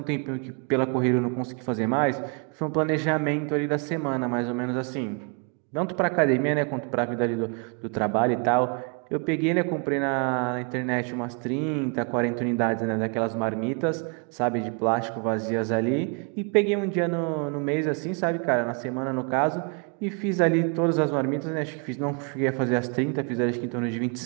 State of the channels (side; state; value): left; quieter; 36.5 dB